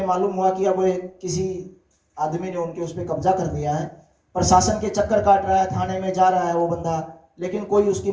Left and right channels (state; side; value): identical; both; correlation 1.00